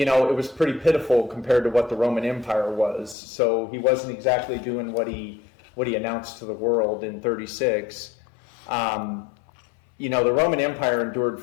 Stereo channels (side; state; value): right; drops out; at 3.2 s